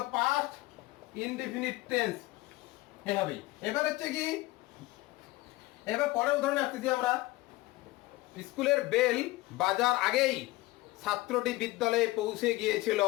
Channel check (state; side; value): quieter; right; 19.7 dB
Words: পাস্ট ইনডিফিনিট টেন্স এভাবেই। এবার হচ্ছে কি, এবার পরের উদাহরণে আসতেছি আমরা, স্কুলের বেল বাজার আগেই ছাত্রটি বিদ্যালয়ে পৌঁছে গিয়েছিল।